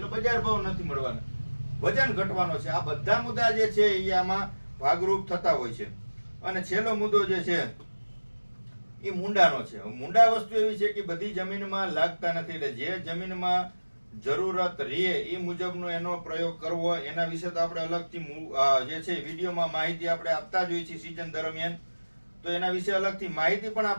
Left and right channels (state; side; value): inverted; both; correlation -1.00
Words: બજાર ભાવ નથી મળવાનો, વજન ઘટવાનો છે. આ બધા મુદ્દા જે છે એ આમાં ભાગરૂપ થતા હોય છે. અને છેલ્લો મુદ્દો જે છે એ મૂંડાનો છે. મૂંડા વસ્તુ એવી છે કે બધી જમીનમાં લાગતા નથી, એટલે જે જમીનમાં જરૂરત રહે એ મુજબનો એનો પ્રયોગ કરવો. એના વિશે તો આપણે અલગથી જે છે વિડીયોમાં માહિતી આપણે આપતા જ હોઈએ છીએ સિઝન દરમિયાન, તો એના વિશે અલગથી માહિતી પણ